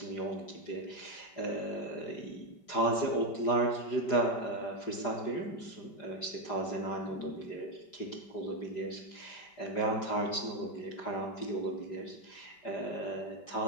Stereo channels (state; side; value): late; right; 4.9 ms